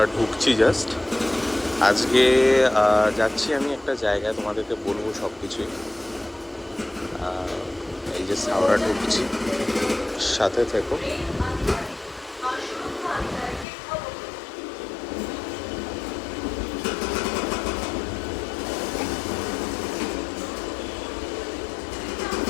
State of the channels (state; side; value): drops out; right; at 13.7 s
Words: ঢুকছি জাস্ট। আজকে যাচ্ছি আমি একটা জায়গায়, তোমাদেরকে বলবো সব কিছুই। এই যে হাওড়া ঢুকছি, সাথে থেকো।